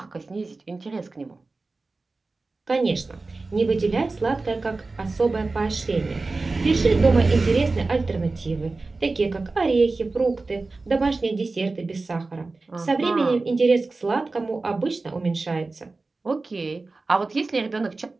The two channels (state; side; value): quieter; left; 3.6 dB